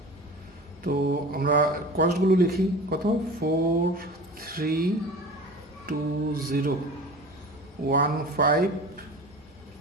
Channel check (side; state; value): both; normal; correlation 0.37